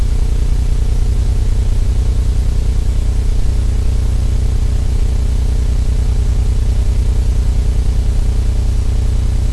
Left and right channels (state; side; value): identical; both; correlation 1.00